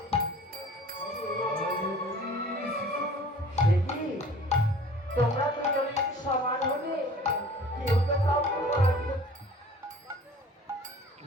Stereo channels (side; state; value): both; normal; correlation 0.47